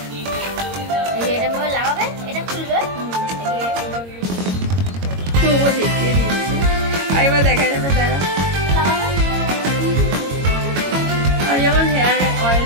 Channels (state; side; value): late; left; 22 ms